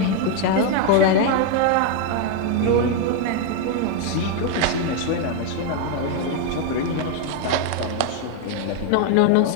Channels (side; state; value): both; different; correlation 0.01